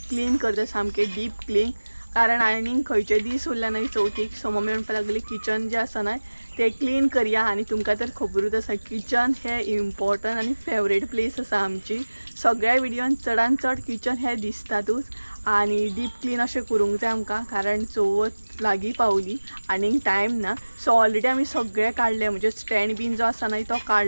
क्लीन करता, सामके डीप क्लीन. कारण आनीक खंयचे दीस उरले नाही चवथीक. सो मम्मी म्हणपाक लागली किचन जे आसा नाही ते क्लीन करूया. आणि तुमकां तर खबरूच आसा किचन हे इम्पॉर्टंट आणि फेवरेट प्लेस आसा आमची. सगळ्या विडियोन चडान चड किचन हे दिसतातूच. आणि डीप क्लीन अशें करूंक जाय आमकां, कारण चवथ लागीं पावली आनीक टायम ना. सो ऑलरेडी आमी सगळे काडले, म्हणजे स्टँड बीन जो आसा न्हय तो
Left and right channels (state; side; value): inverted; both; correlation -1.00